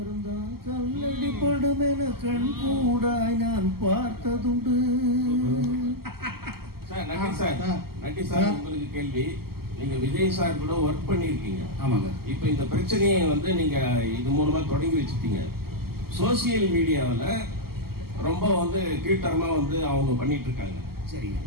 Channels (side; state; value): left; late; 0.95 ms